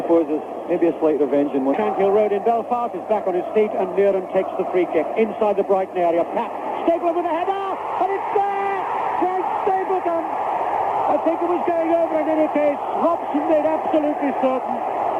there's maybe a slight revenge in one. Shankill Road in Belfast is back on his feet, and Muren takes the free kick inside the Brighton area. Pat Stapleton with a header, and it's there! Frank Stapleton! I think it was going over in any case. Robson made absolutely certain.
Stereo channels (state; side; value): identical; both; correlation 1.00